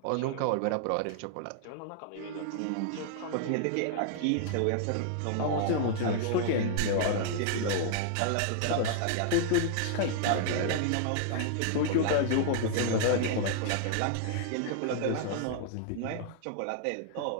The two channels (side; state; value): both; different; correlation -0.01